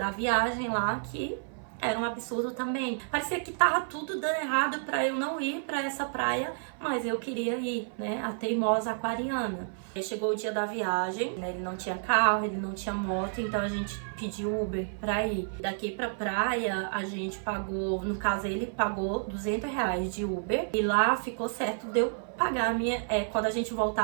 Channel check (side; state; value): left; silent; 55 dB below the other